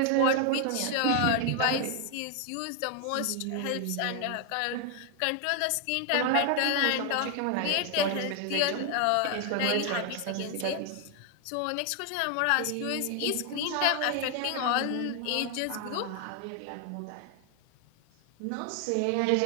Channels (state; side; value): different; both; correlation 0.00